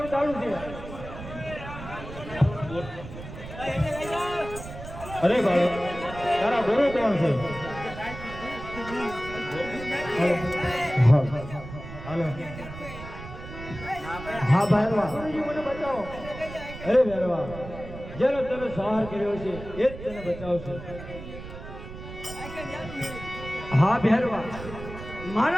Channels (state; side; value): noise; right; rumble, 12 dB below the sound